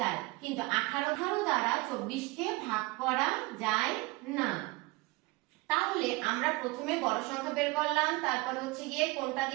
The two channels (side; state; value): left; quieter; 23.6 dB